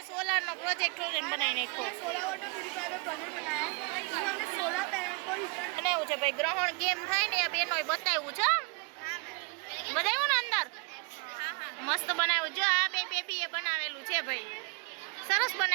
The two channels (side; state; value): left; quieter; 31.8 dB